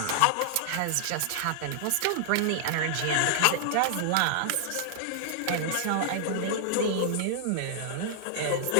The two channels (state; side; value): different; both; correlation -0.01